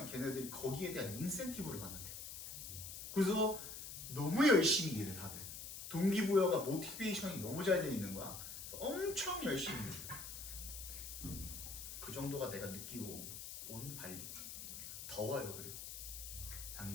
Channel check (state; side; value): noise; left; hiss, 9 dB below the sound